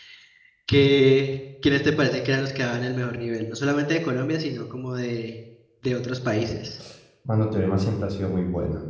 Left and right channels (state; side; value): identical; both; correlation 1.00